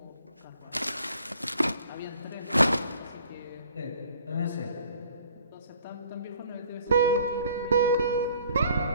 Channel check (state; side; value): inverted; both; correlation -0.56